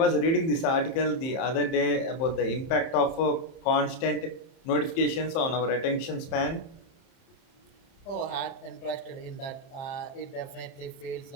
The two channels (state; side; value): late; right; 30 ms